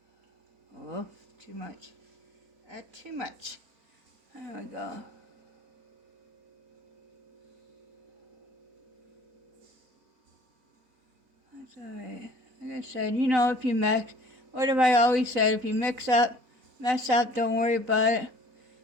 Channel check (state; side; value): late; left; 4.0 ms